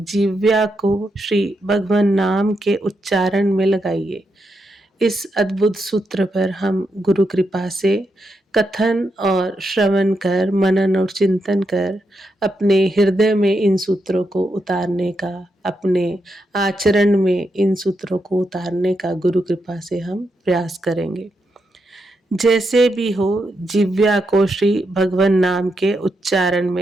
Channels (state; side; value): normal; both; correlation 0.83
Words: को श्री भगवान नाम के उच्चारण में लगाइए। इस अद्भुत सूत्र पर हम गुरु कृपा से कथन और श्रवण कर, मनन और चिंतन कर अपने हृदय में इन सूत्रों को उतारने का, अपने आचरण में इन सूत्रों को उतारने का गुरु कृपा से हम प्रयास करेंगे। जैसे भी हो, जिव्या को श्री भगवान नाम के उच्चारण